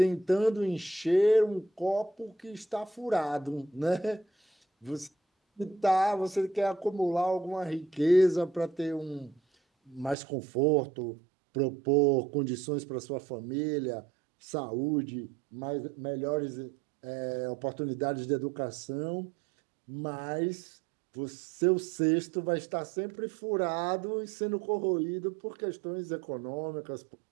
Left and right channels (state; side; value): drops out; left; at 10.2 s